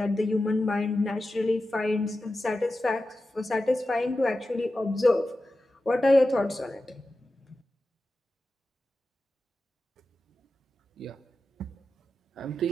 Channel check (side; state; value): both; normal; correlation 0.92